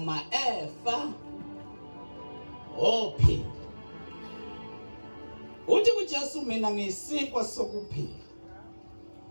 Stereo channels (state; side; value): inverted; both; correlation -1.00